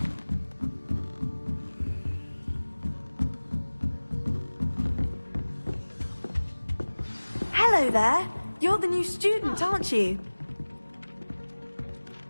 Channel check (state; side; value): inverted; both; correlation -1.00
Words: Hello there. You're the new student, aren't you?